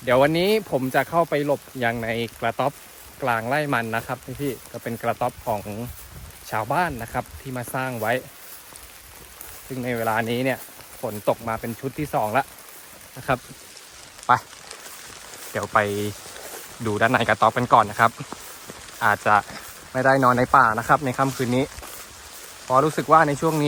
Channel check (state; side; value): identical; both; correlation 1.00